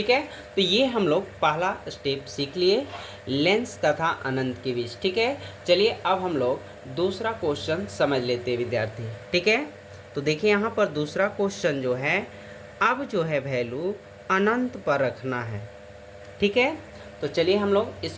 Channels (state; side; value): identical; both; correlation 1.00